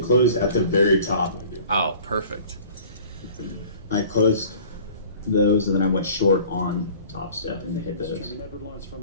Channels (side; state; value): both; inverted; correlation -0.47